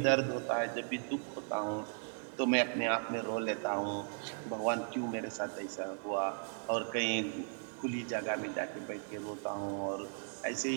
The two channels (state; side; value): silent; left; 53 dB below the other